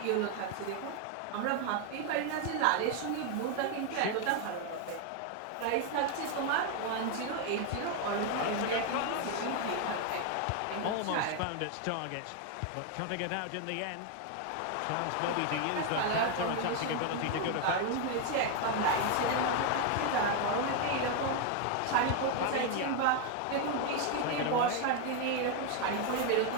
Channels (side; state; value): both; different; correlation 0.01